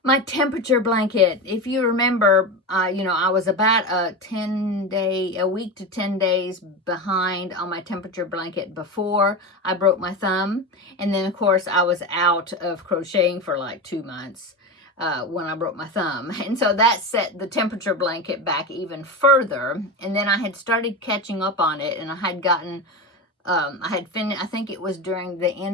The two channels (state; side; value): normal; both; correlation 0.21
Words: my temperature blanket. If you remember, you know, I was about a week to 10 days behind on my temperature blanket before I broke my thumb. And then of course I was out of crocheting for like 2 months. When I broke my thumb. And so that set the temperature blanket back even further. And then I had started catching up on it, and I had gotten, I had finished, I think it was during the